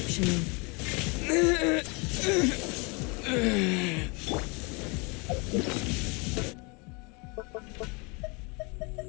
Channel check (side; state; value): right; quieter; 30.4 dB